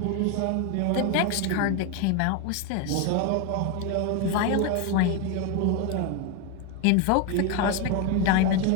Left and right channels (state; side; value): different; both; correlation 0.02